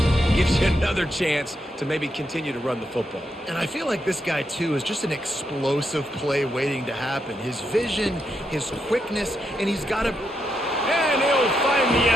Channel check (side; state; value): both; normal; correlation 0.82